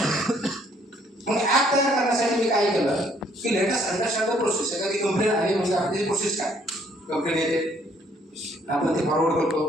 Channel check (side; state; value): both; normal; correlation 0.65